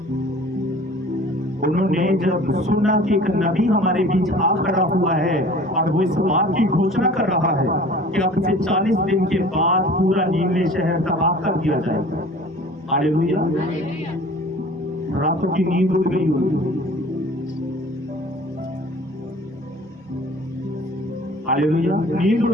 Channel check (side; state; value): both; normal; correlation 0.45